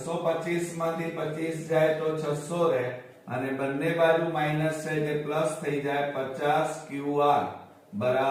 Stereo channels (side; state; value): both; identical; correlation 1.00